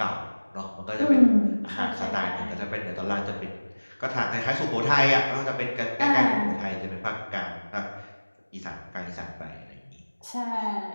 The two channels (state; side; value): inverted; both; correlation -1.00